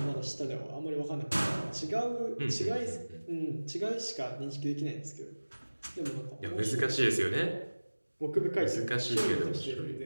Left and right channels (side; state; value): both; inverted; correlation -1.00